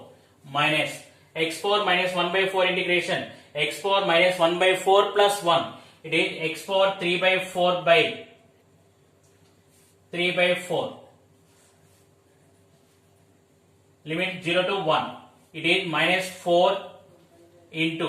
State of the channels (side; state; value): both; identical; correlation 1.00